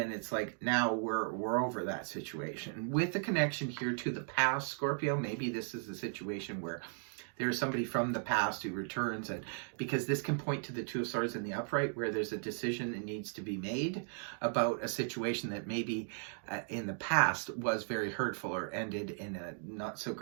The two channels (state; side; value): silent; left; 53 dB below the other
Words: it's like, now we're over that situation. With the connection here to the past, Scorpio, maybe this is a situation where there's somebody from the past who returns, and because this can point to the Two of Swords in the upright, where there's a decision that needs to be made about a situation that maybe in the past was very hurtful or ended in a not so